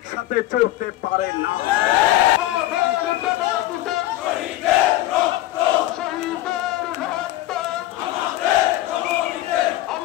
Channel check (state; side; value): quieter; right; 15.5 dB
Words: চলতে পারে না।